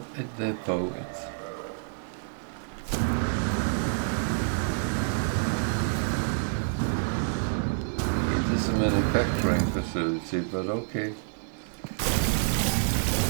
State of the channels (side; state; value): left; silent; 59 dB below the other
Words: a depot. It is a manufacturing facility, but okay.